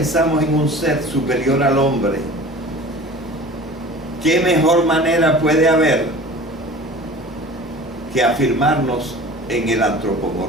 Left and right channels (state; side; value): normal; both; correlation 0.41